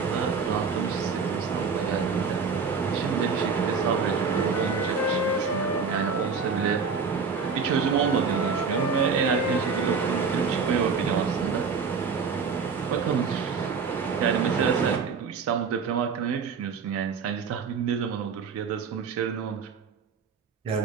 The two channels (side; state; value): left; quieter; 5.3 dB